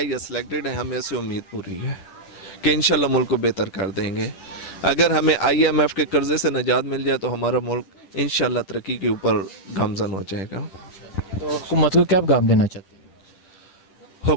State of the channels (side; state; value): right; late; 10 ms